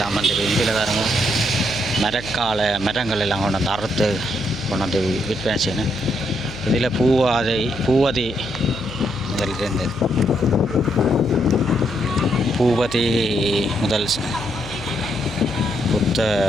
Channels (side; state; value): left; noise; hum, 14 dB below the sound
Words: வந்துருக்கு. இதில் பாருங்க, மரங்கள் எல்லாம் கொண்டு வந்து அறுத்து கொண்டு வந்து விற்பனை செய்யணும். இதில் பூவதி முதல் இருந்தது. பூபதி முதல்